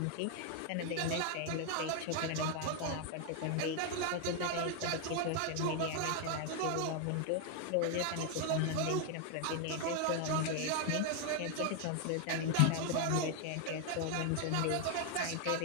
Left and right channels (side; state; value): both; different; correlation 0.00